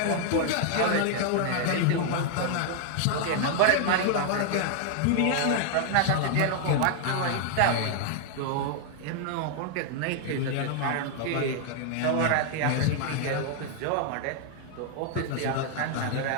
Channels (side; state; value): both; different; correlation 0.00